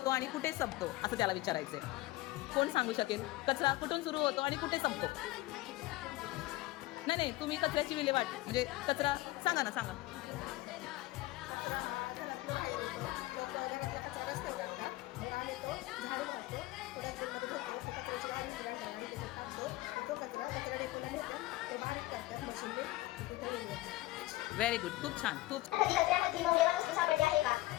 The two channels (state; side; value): quieter; right; 18.8 dB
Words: आणि कुठे संपतो असं त्याला विचारायचंय. कोण सांगू शकेल? कचरा कुठून सुरू होतो आणि कुठे संपतो? नाही, तुम्ही कचऱ्याची विल्हेवाट म्हणजे कचरा सांगा ना, सांगा. व्हेरी गुड, खूप छान, खूप. कचऱ्यामध्ये मौल्यवान वस्तू सापडली आहे का?